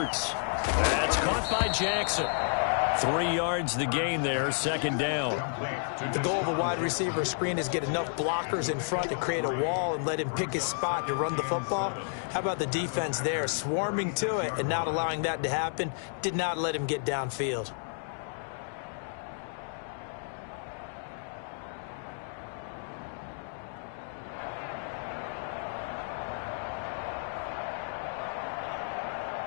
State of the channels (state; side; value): silent; right; digital silence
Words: That's caught by Jackson. 3 yards the gain there, 2nd down. The goal of a wide receiver screen is get enough blockers in front to create a wall and let him pick his spot to run the football. How about the defense there, swarming to it and not allowing that to happen? Did not let him get downfield.